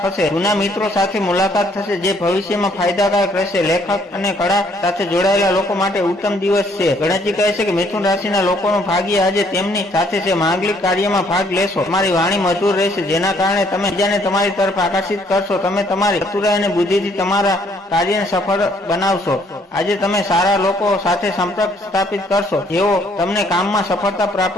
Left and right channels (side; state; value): both; normal; correlation 0.65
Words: થશે। જૂના મિત્રો સાથે મુલાકાત થશે જે ભવિષ્યમાં ફાયદાકારક રહેશે। લેખક અને કળા સાથે જોડાયેલા લોકો માટે ઉત્તમ દિવસ છે। ગણેશજી કહે છે કે મિથુન રાશિના લોકોનું ભાગ્ય આજે તેમની સાથે છે। માંગલિક કાર્યમાં ભાગ લેશો। તમારી વાણી મધુર રહેશે જેના કારણે તમે બીજાને તમારી તરફ આકર્ષિત કરશો। તમે તમારી ચતુરાઈ અને બુદ્ધિથી તમારા કાર્યને સફળ બનાવશો। આજે તમે સારા લોકો સાથે સંપર્ક સ્થાપિત કરશો જેઓ તમને કામમાં સફળતા